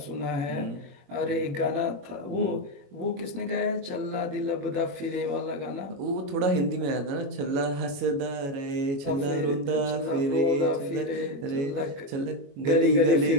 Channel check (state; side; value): late; left; 21 ms